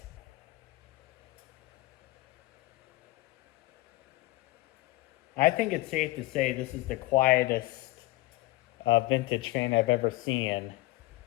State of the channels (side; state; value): right; quieter; 19.6 dB